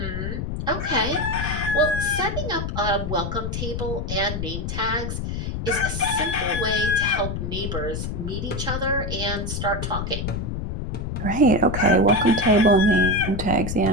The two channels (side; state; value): left; noise; rumble, 4 dB below the sound